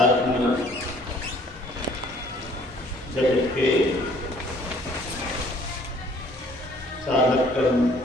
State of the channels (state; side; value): normal; both; correlation 0.57